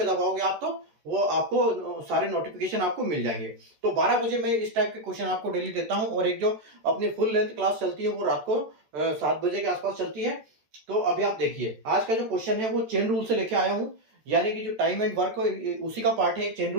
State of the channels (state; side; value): late; left; 13 ms